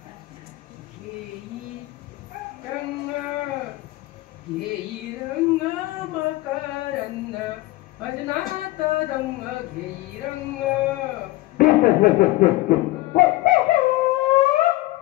भजनात दंग घेई रंग.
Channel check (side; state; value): right; quieter; 18.7 dB